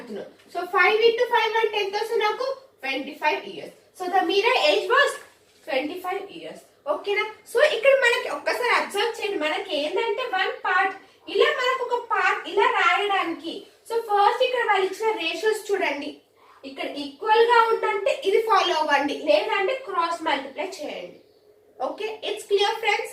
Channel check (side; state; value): both; identical; correlation 1.00